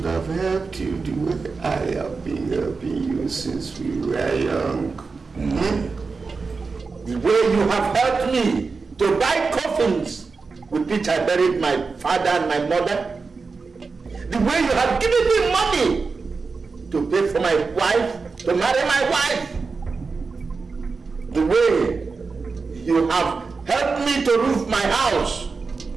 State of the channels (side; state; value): left; quieter; 4.5 dB